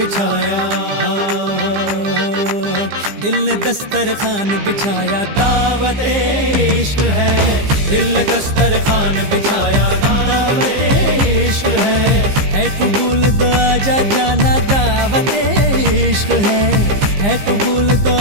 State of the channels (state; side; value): late; left; 15 ms